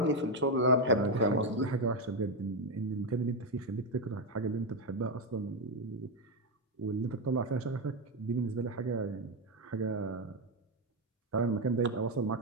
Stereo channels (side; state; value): both; normal; correlation 0.07